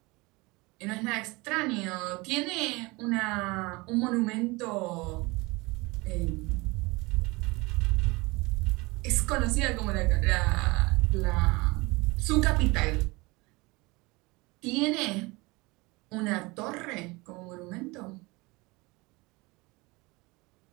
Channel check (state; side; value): quieter; left; 24.3 dB